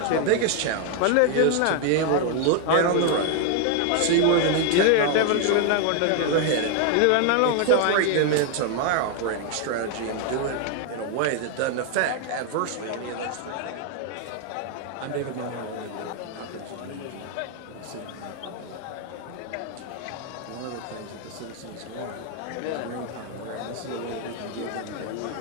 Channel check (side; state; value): both; different; correlation 0.01